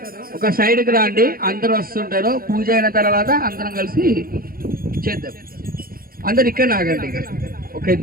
ఒక సైడ్ కి రండి. అందరూ వస్తుంటారు. పూజ అయిన తర్వాత అందరం కలిసి చేద్దాం. అందరు ఇక్కడ ఆగండి. ఒక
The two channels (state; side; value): late; left; 0.42 ms